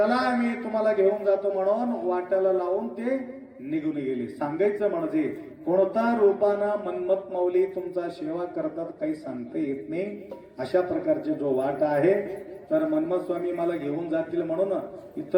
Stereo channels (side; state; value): both; identical; correlation 1.00